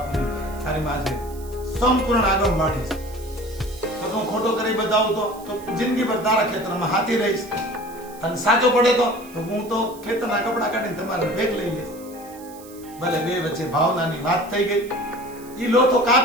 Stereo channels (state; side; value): noise; right; hiss, 21 dB below the sound